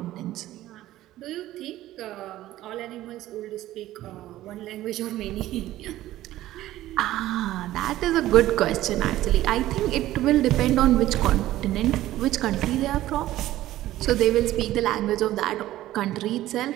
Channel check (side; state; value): left; quieter; 14.9 dB